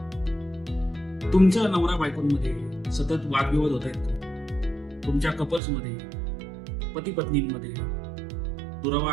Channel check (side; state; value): left; drops out; at 5.6 s